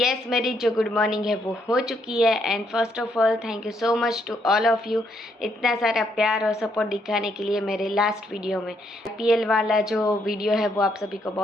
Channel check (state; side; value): normal; both; correlation 0.74